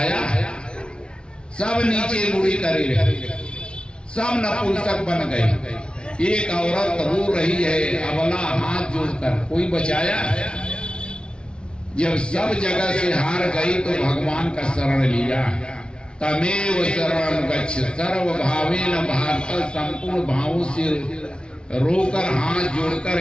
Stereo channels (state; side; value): late; right; 0.055 ms